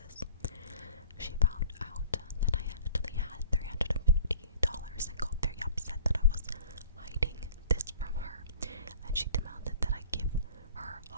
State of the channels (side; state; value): both; inverted; correlation -0.48